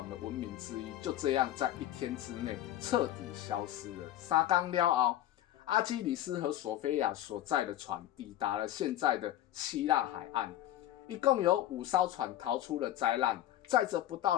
的文明之一，就这样在1天之内彻底消失了。3天了后，阿基里斯和索菲亚所在的船抵达了现在的希腊海岸，一共有5艘船逃出了灾难，载着不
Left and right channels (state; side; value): quieter; right; 13.2 dB